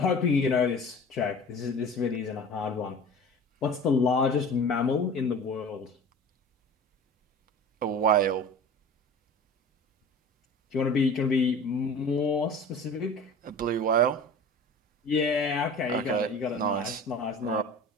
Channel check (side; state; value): both; normal; correlation 0.39